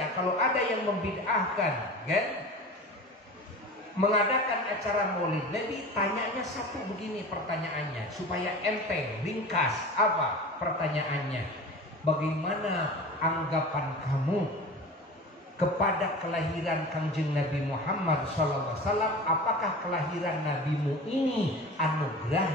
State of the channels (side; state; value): both; normal; correlation 0.35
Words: kalau ada yang membid'ahkan, mengadakan acara Maulid Nabi, tanyanya satu begini pertanyaannya, supaya enteng, ringkas. Apa pertanyaannya? Bagaimana anggapan kamu kepada kelahiran Kangjeng Nabi Muhammad SAW? Apakah kelahiran nabimu ini